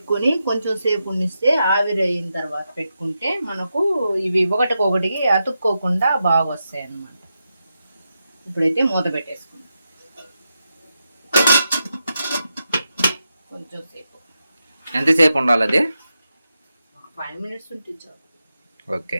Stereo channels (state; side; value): inverted; both; correlation -0.88